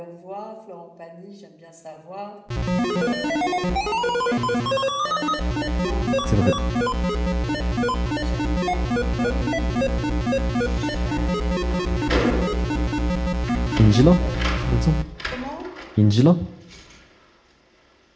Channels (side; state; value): both; identical; correlation 1.00